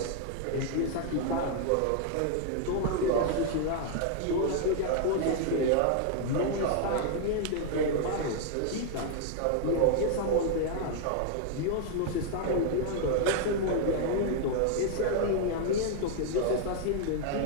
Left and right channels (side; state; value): both; different; correlation -0.01